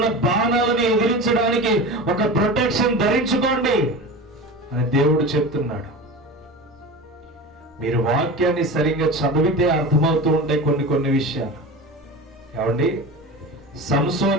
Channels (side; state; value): both; normal; correlation 0.30